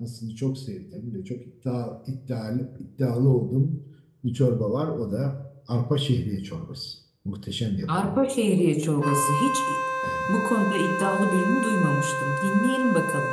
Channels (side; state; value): both; identical; correlation 1.00